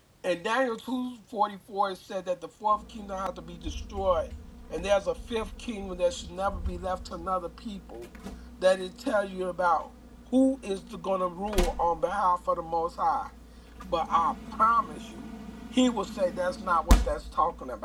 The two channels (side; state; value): both; identical; correlation 1.00